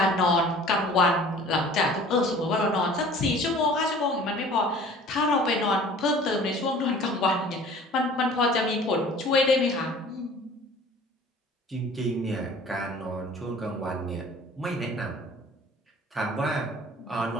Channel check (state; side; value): normal; both; correlation 0.47